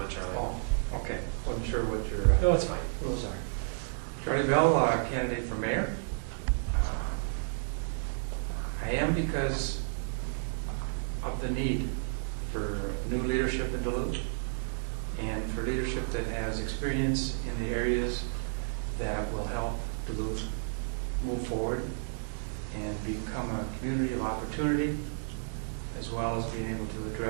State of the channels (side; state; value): left; silent; digital silence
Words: Charlie. Oh, okay. Wasn't sure what your No, it's fine. rules are. Charlie Bell, candidate for mayor. I am because of the need for new leadership in Duluth and for leadership that has experience in the areas that will help Duluth move forward and become a community of opportunity, as well as being able to